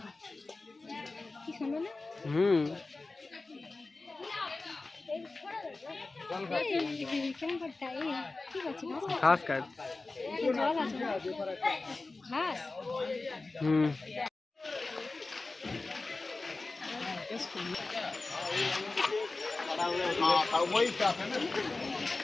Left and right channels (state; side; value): quieter; right; 3.4 dB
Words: কি শুনো না হুম কেমন করতে ঠিক আছে ঘাস কাট জল আছে ঘাস হুম